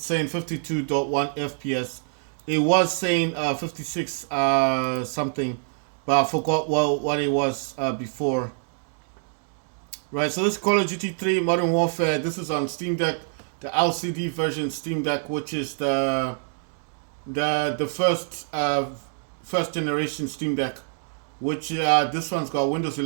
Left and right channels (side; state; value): left; silent; digital silence